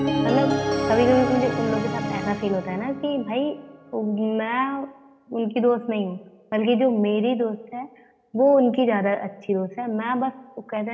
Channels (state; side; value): identical; both; correlation 1.00